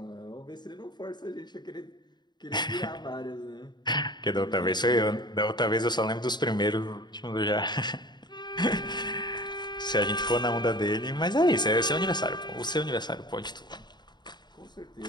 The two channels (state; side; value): late; right; 0.21 ms